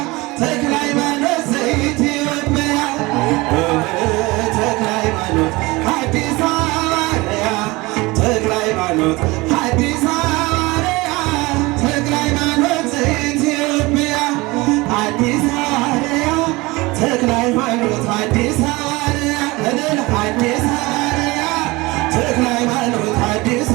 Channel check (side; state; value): left; quieter; 22.6 dB